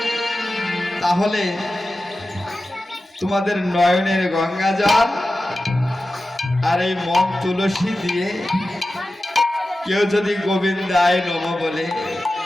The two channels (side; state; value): both; normal; correlation 0.94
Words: তাহলে তোমাদের নয়নের গঙ্গা জল আর এই মন তুলসী দিয়ে কেউ যদি গোবিন্দায় নম বলে